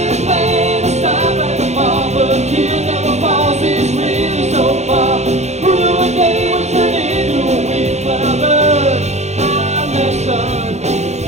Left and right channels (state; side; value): late; left; 0.32 ms